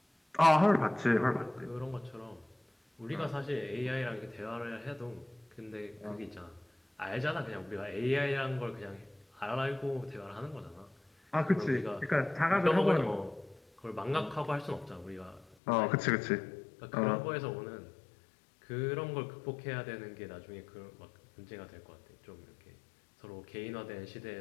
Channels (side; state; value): right; drops out; at 15.6 s